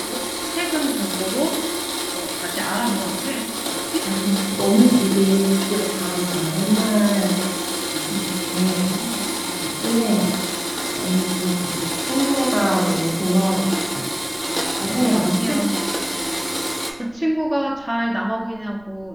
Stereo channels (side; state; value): right; noise; rumble, 27 dB below the sound